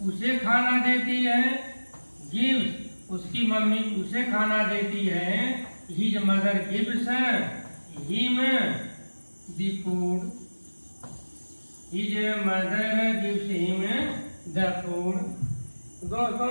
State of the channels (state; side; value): inverted; both; correlation -1.00